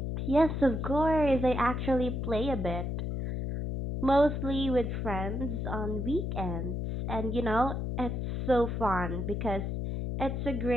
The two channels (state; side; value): noise; left; hum, 2 dB below the sound